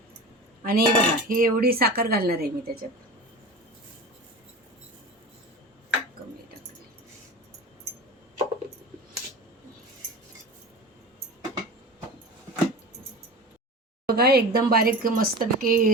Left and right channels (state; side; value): normal; both; correlation 0.32